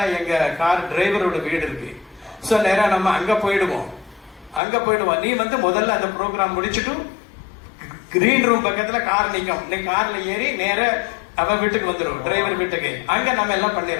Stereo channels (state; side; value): drops out; right; at 4.6 s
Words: எங்க கார் டிரைவரோட வீடு இருக்கு. ஸோ நேரம் நம்ம அங்க போயிடுவோம். நீ வந்து முதல்ல அந்த ப்ரோக்ராம் முடிச்சுட்டு கிரீன் ரூம் பக்கத்துல கார் நிற்கும், நீ கார்ல ஏறி நேர அவன் வீட்டுக்கு வந்துடும், டிரைவர் வீட்டுக்கு. அங்க நம்ம எல்லாம்